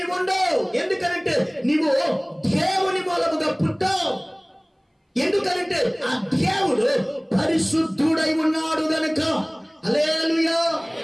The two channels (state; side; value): identical; both; correlation 1.00